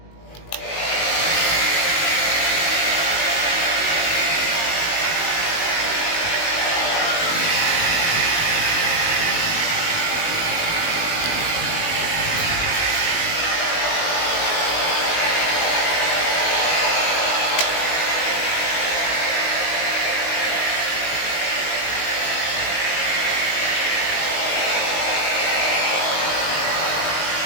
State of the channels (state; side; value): late; right; 19 ms